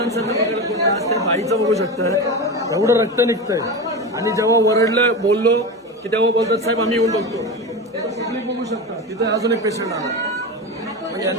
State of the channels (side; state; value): both; normal; correlation 0.23